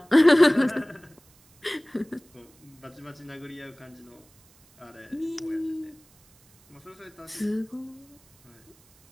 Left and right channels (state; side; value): noise; right; hiss, 30 dB below the sound